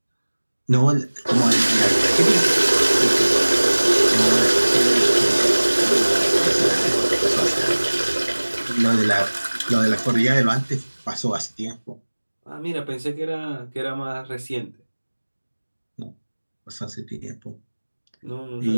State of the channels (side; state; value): both; inverted; correlation -1.00